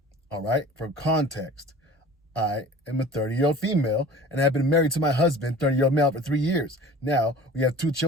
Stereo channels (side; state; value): both; normal; correlation 0.43